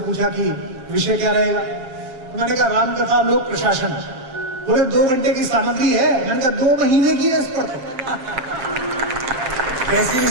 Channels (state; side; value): late; left; 7.6 ms